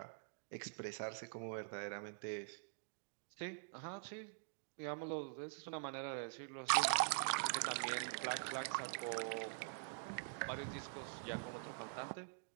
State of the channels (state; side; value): silent; left; digital silence